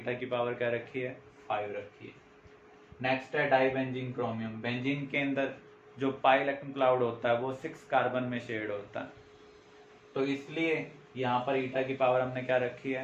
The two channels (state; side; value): identical; both; correlation 1.00